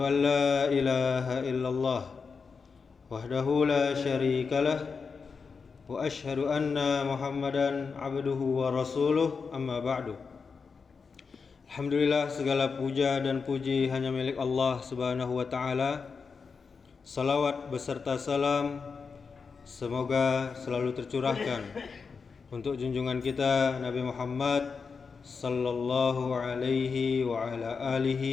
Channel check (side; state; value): right; quieter; 5.2 dB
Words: an la ilaha illallah wahdahu la syarikalah, wa asyhadu anna Muhammadan abduhu wa rasuluh, amma ba'du. Alhamdulillah, segala puja dan puji hanya milik Allah Subhanahu wa ta'ala. Salawat beserta salam semoga selalu tercurahkan untuk junjungan kita Nabi Muhammad sallallahu alaihi wa ala